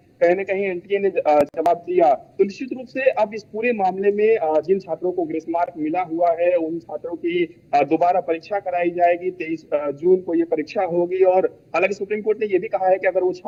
कहीं ना कहीं एनटीए ने जवाब दिया। तो निश्चित रूप से अब इस पूरे मामले में जिन छात्रों को ग्रेस मार्क मिला हुआ है उन छात्रों की दोबारा परीक्षा कराई जाएगी। 23 जून को ये परीक्षा होगी। और हालांकि सुप्रीम कोर्ट ने ये भी कहा है कि अगर वो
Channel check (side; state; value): both; identical; correlation 1.00